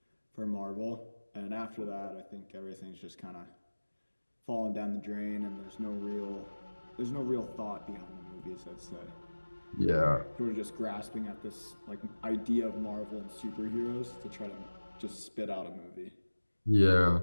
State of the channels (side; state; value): both; inverted; correlation -1.00